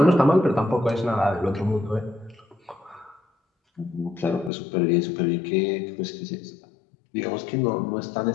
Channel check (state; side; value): drops out; right; at 4.5 s